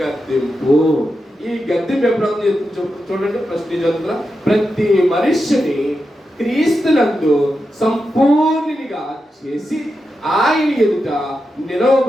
గద్దింపు. ఈ గద్దింపు ఎప్పుడవుతుంది చూడండి. ఫస్ట్ చదువుతున్నా, ప్రతి మనుష్యుని క్రీస్తునందు సంపూర్ణునిగా చేసి ఆయన ఎదుట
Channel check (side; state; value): both; normal; correlation 0.89